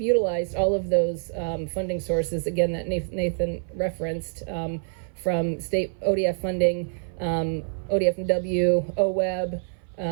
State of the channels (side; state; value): left; silent; 57 dB below the other